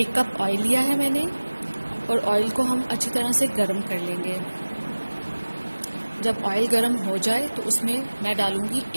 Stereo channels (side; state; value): both; inverted; correlation -1.00